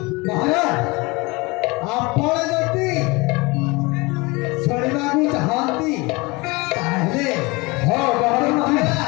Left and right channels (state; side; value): quieter; right; 25.1 dB